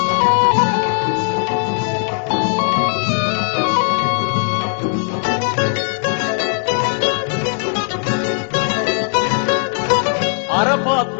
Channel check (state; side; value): silent; right; 59 dB below the other